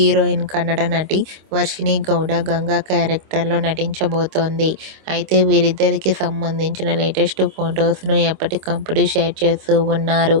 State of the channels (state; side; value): late; left; 26 ms